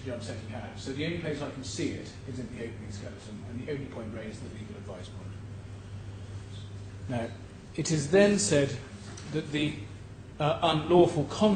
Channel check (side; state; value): both; identical; correlation 1.00